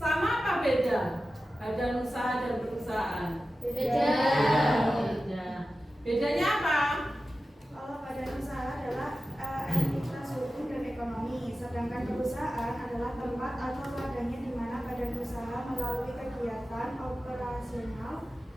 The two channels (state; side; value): normal; both; correlation 0.94